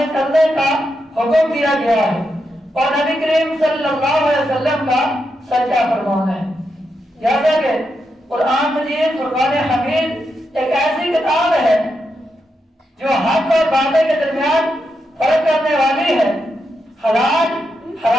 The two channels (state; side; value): normal; both; correlation 0.85